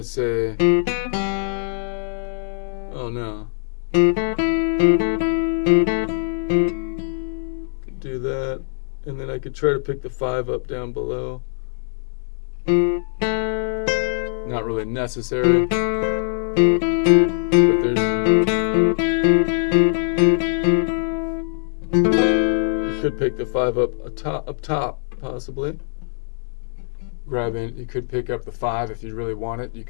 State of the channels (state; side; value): silent; right; digital silence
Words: to say, oh no. Could do that, and then I could try to pick the 5 up down below. Not really necessary, but you could pick the 5 up top, possibly. You could pick up the 5 if you really want it. You